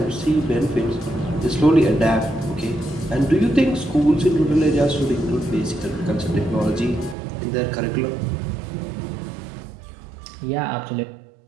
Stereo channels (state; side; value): drops out; left; at 7.2 s